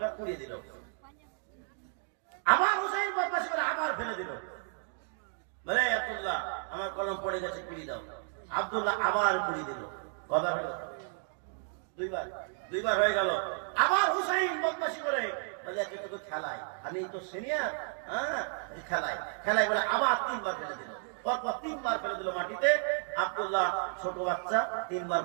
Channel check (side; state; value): left; silent; 56 dB below the other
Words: উড়িয়ে দিল। আমার হুসাইন বদমাশি করে আবার ফেলে দিল, বলে আব্দুল্লাহ আমার কলম পড়ে গেছে, কুড়িয়ে দাও। আব্দুল্লাহ আবার কুড়িয়ে দিল। কথা হলো দুইবার হয়ে গেল। আবার হুসাইন বদমাশি করে বলে তোকে খেলায়, আমি তো সিনিয়র, হ্যাঁ খেলাই বলে আবার 3বার ফেলে দিল। পরপর 3বার ফেলে দিল মাটিতে। আব্দুল্লাহ ছোট বাচ্চা, 3বার